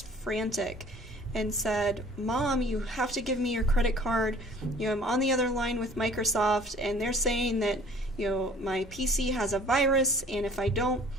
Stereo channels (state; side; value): normal; both; correlation 0.51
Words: frantic and said, Mom, you have to give me your credit card. I'm on the other line with Microsoft and they're saying that my PC has a virus, and if I don't